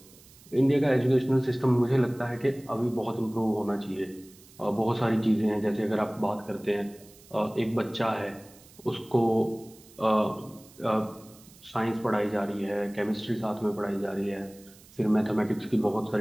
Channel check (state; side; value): noise; right; hiss, 24 dB below the sound